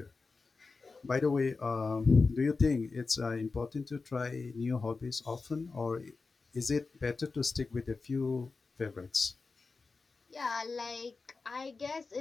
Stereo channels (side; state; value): right; quieter; 4.2 dB